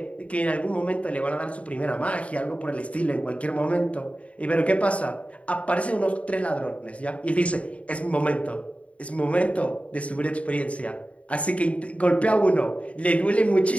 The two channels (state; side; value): late; right; 0.065 ms